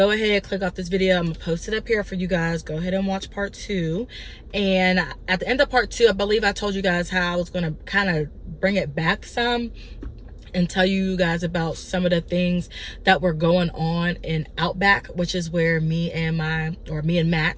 ahead, click off this video. I'm gonna post it up here for you guys. Go ahead and watch part 2. And at the end of part 2, I believe I told you guys how I was gonna kind of bring it back some and tell you guys about some of the things that were going on in Outback, which is where me and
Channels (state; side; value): identical; both; correlation 1.00